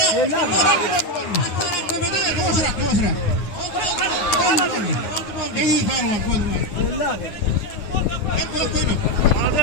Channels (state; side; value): late; right; 9.7 ms